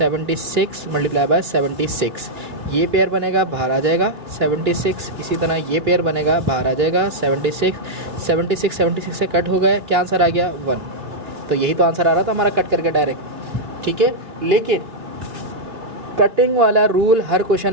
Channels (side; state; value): left; late; 3.1 ms